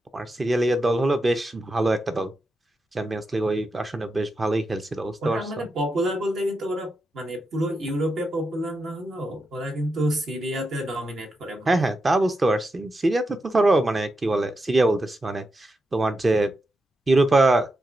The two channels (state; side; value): normal; both; correlation 0.87